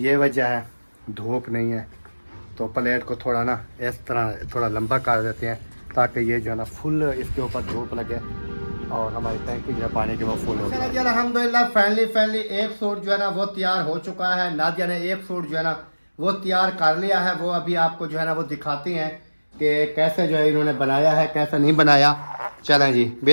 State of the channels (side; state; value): both; inverted; correlation -1.00